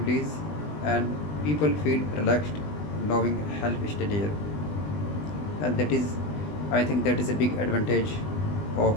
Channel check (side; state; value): right; late; 20 ms